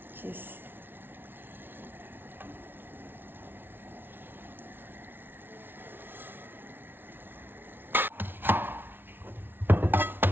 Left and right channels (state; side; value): late; left; 0.10 ms